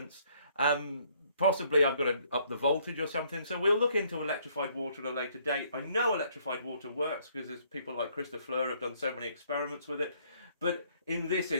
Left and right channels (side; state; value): both; inverted; correlation -0.65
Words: Possibly I've got to up the voltage or something. So we'll look into electrified water at a later date. I know electrified water works because there's people like Christophe Fleur have done so many experiments with it. But in this